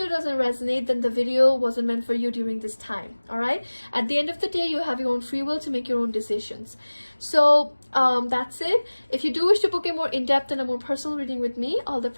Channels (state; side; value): inverted; both; correlation -1.00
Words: doesn't resonate, then the video wasn't meant for you during this time. All right, at the end of the day, you have your own free will to make your own decisions. So that's it. If you do wish to book a more in-depth and a more personal reading with me, all the